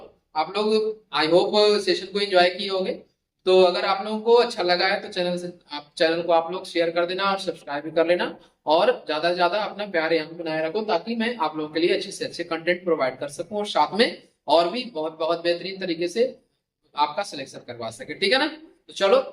आप लोग, आई होप सेशन को एंजॉय किए होंगे। तो अगर आप लोगों को अच्छा लगा है तो चैनल को आप लोग शेयर कर देना और सब्सक्राइब भी कर लेना, और ज्यादा से ज्यादा अपना प्यार यहाँ पे बनाए रखो, ताकि मैं आप लोगों के लिए अच्छे से अच्छे कंटेंट प्रोवाइड कर सकूं, और साथ में और भी बहुत बहुत बेहतरीन तरीके से आपका सिलेक्शन करवा सके, ठीक है ना। तो चलो,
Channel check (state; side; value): identical; both; correlation 1.00